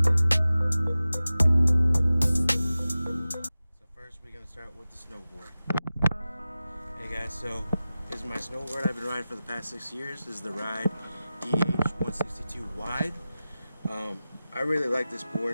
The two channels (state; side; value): inverted; both; correlation -0.95